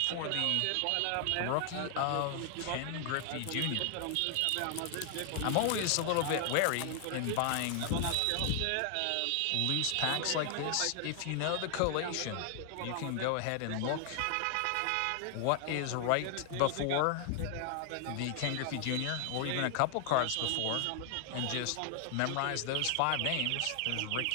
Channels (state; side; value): different; both; correlation 0.00